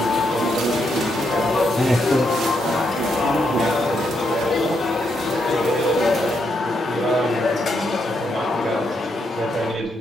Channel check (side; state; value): both; normal; correlation 0.79